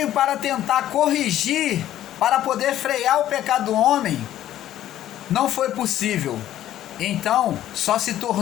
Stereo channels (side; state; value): right; quieter; 12.5 dB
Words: para tentar corrigir, para poder frear o pecado do homem, não foi possível. Então, só se